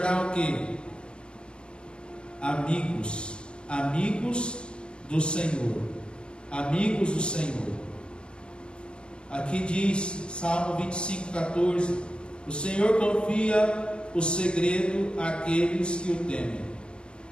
o quê? Amigos. Amigos do Senhor. Amigos do Senhor. Aqui diz, Salmo 25:14: o Senhor confia o segredo àqueles que o temem.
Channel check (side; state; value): right; late; 0.054 ms